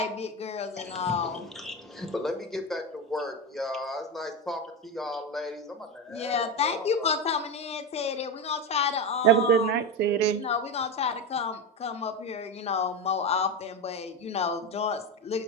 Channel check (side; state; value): both; normal; correlation 0.16